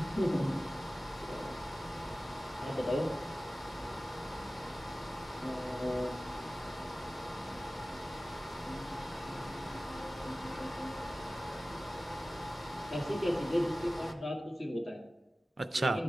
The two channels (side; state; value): both; normal; correlation 0.96